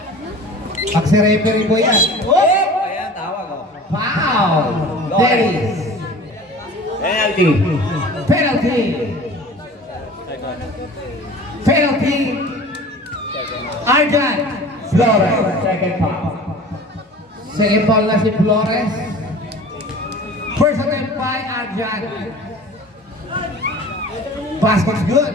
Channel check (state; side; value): normal; both; correlation 0.41